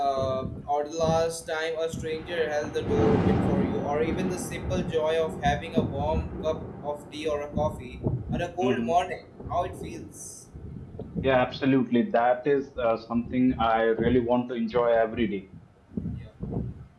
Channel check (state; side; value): identical; both; correlation 1.00